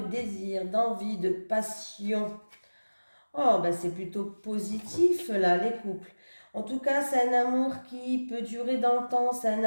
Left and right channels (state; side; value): inverted; both; correlation -1.00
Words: de désir, d'envie, de passion. Oh, ben c'est plutôt positif là, les couples. En tout cas, c'est un amour qui peut durer dans le temps, c'est un